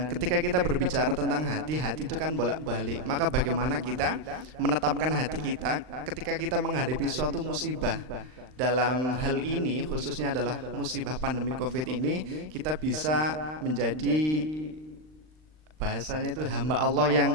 ketika kita berbicara tentang hati itu kan bolak-balik. Maka bagaimana kita menetapkan hati kita ketika kita menghadapi suatu musibah. Dalam hal ini khususnya adalah musibah pandemi COVID ini, kita bisa menjadi, bahasanya itu hamba Allah yang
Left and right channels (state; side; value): late; left; 39 ms